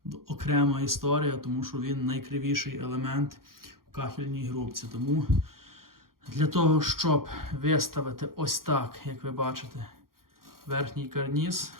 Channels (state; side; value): late; left; 0.92 ms